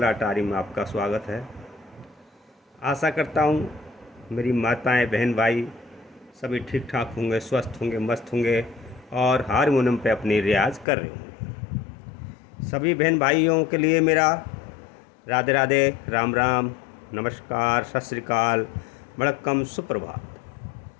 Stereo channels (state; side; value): drops out; right; at 10.9 s